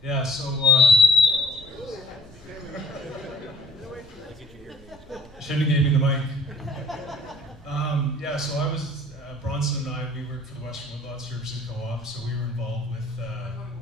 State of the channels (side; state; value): both; normal; correlation 0.53